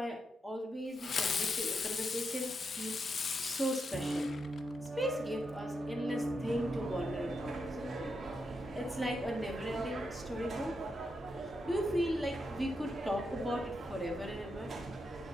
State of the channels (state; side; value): normal; both; correlation 0.84